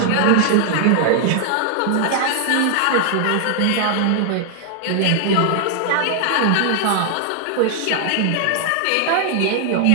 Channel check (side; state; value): both; different; correlation 0.00